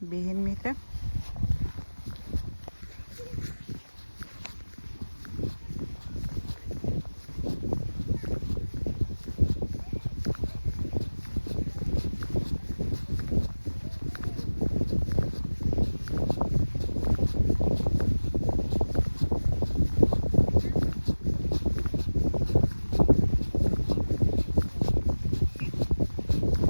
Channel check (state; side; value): inverted; both; correlation -1.00